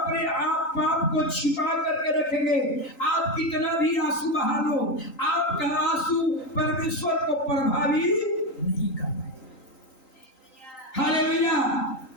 आप पाप को छिपा करके रखेंगे, आप कितना भी आंसू बहा लो, आपका आंसू परमेश्वर को प्रभावित नहीं कर पाएगा। हालेलुया।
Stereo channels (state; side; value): late; right; 3.9 ms